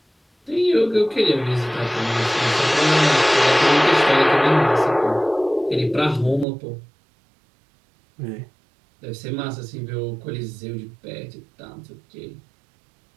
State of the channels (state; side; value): drops out; left; at 6.5 s